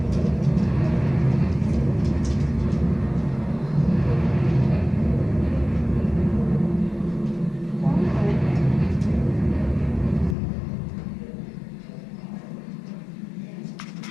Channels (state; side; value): drops out; right; at 10.4 s